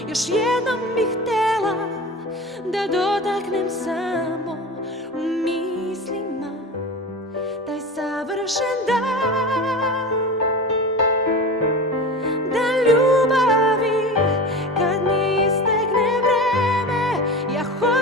još jednom bih htjela da dotaknem samo u mislima taj savršen dan, dan ljubavi. Kad mi istekne vreme, ja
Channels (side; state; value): both; normal; correlation 0.31